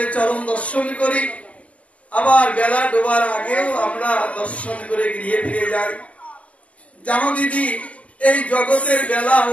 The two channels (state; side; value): late; right; 0.066 ms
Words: চরণ দর্শন করি, আবার বেলা ডোবার আগেও আমরা দর্শন করে গৃহে ফিরে যাই। জানো দিদি, এই জগতের বেলা